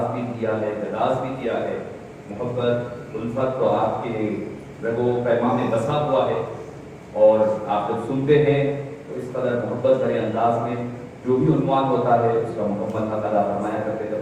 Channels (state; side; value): identical; both; correlation 1.00